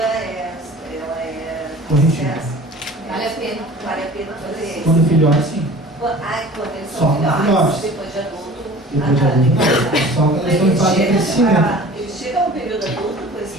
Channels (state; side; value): normal; both; correlation 0.43